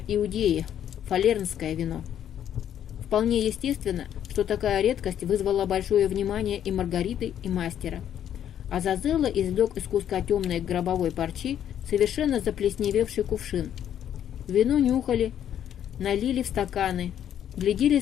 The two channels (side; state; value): right; quieter; 10.1 dB